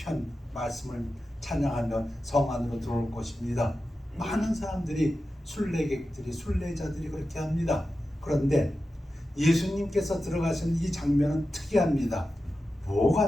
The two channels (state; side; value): normal; both; correlation 0.92